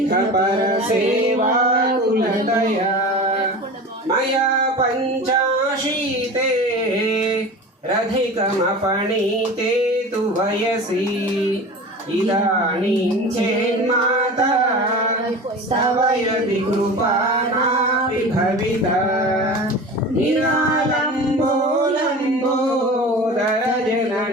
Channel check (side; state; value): both; normal; correlation 0.34